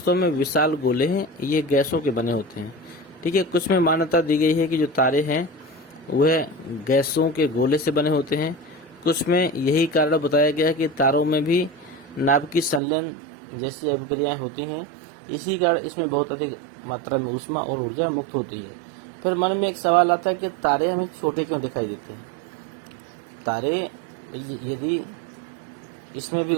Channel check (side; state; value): left; drops out; at 12.8 s